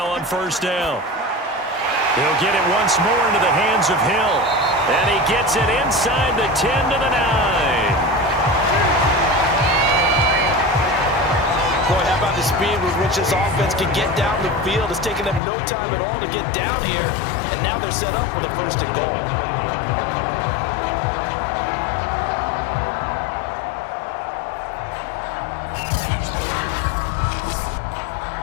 on first down. He'll get it once more into the hands of Hill. And he gets it inside the 10 to the 9. Boy, how about the speed with which this offense can get down the field? It's taken them no time at all to get down here. And now they're set up with a 1st and goal.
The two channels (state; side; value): drops out; right; at 15.4 s